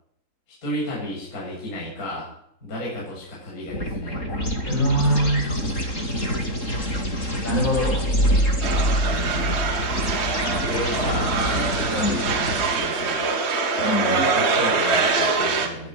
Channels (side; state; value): right; late; 3.7 ms